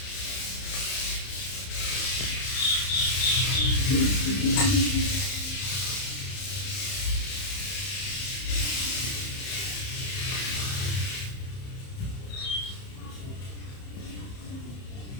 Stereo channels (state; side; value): late; right; 31 ms